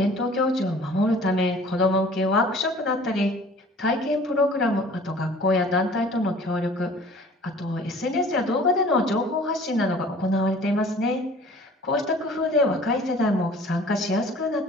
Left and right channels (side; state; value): both; normal; correlation 0.49